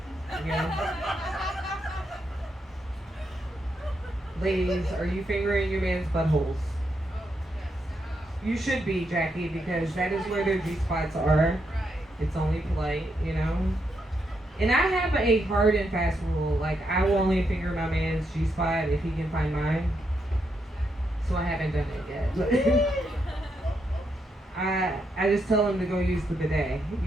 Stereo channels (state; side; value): normal; both; correlation 0.80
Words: you know. Ladies, are you fingering your man's buttholes? You should be, Jackie, because that is where their G-spots are. It's only polite, you know. And I have a hard and fast rule. Like, I will only finger my man's G-spot if he can find mine. So I haven't done it yet. I just tell him to go use the bidet,